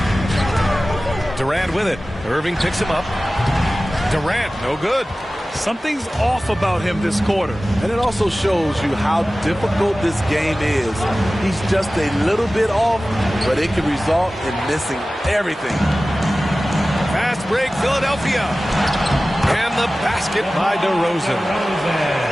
Durant with it. Irving picks him up. Durant, no good. Something's off about him this quarter. And it also shows you how difficult this game is. He's just a little bit off, but it can result in missing everything. Fast break, Philadelphia. And the basket by DeRozan.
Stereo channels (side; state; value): both; normal; correlation 0.96